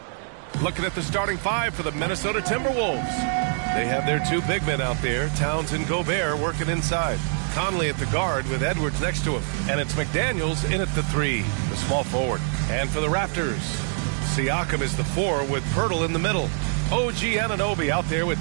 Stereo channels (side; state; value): left; silent; digital silence